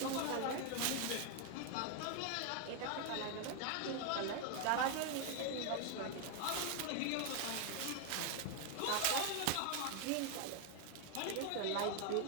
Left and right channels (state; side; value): different; both; correlation 0.00